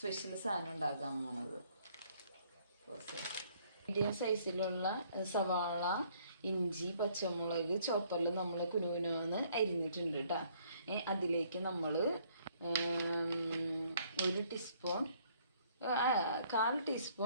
സാധനം ഉണ്ടാക്കാൻ പോണത്. മീഡിയം സൈസിലുള്ള സവാള, ഇഞ്ചി, പച്ചമുളക് ചോപ്പറിൽ നമ്മൾ കുനുകുനാന്ന് അരിഞ്ഞിട്ടുണ്ട് കേട്ടോ. അതിലേക്ക് നമ്മൾ 1 ടീസ്പൂൺ, 1/4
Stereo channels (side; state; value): both; inverted; correlation -0.63